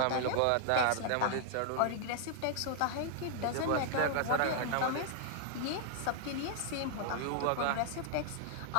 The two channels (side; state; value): both; different; correlation 0.00